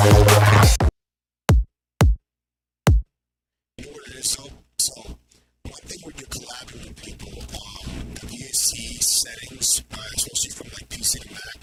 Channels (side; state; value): both; identical; correlation 1.00